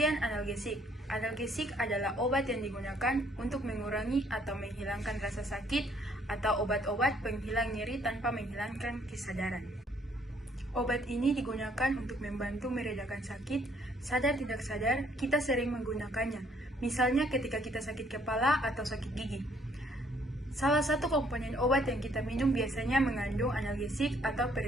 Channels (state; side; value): normal; both; correlation 0.65